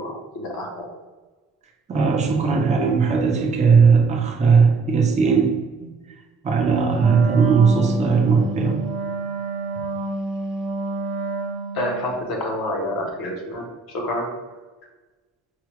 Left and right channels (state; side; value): quieter; left; 4.6 dB